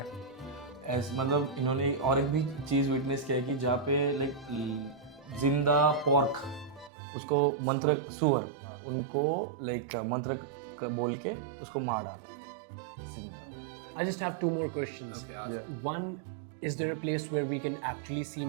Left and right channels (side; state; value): left; drops out; at 6.9 s